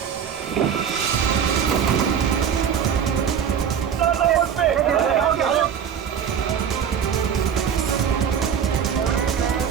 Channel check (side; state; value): left; quieter; 8.1 dB